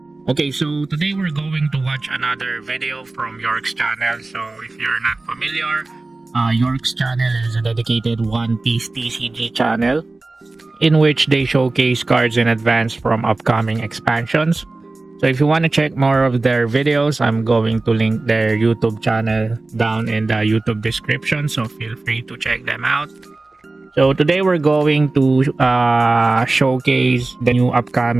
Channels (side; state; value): left; quieter; 3.2 dB